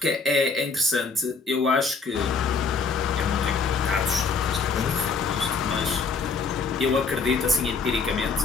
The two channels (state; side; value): quieter; right; 4.7 dB